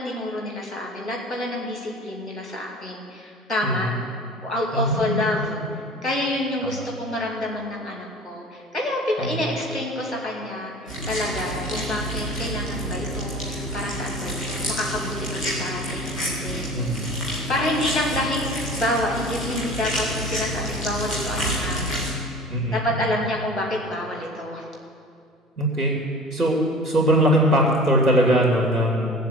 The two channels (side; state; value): both; normal; correlation 0.41